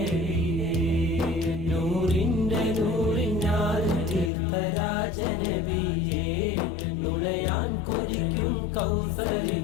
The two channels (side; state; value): right; drops out; at 4.3 s